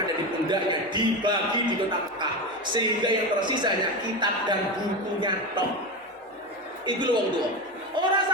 ada di pundaknya dibagi di kota Mekah, sehingga yang tersisa hanya kitab dan bukunya tok. Iku lho wong tua. Ora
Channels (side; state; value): both; normal; correlation 0.19